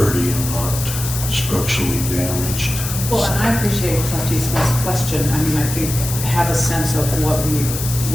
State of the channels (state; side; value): noise; left; hiss, 6 dB below the sound